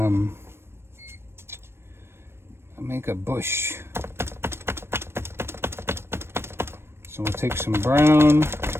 make a bush. So we'll take some brown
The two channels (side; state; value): left; late; 0.12 ms